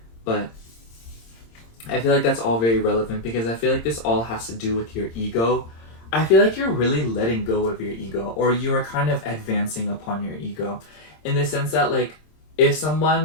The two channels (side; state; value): right; late; 26 ms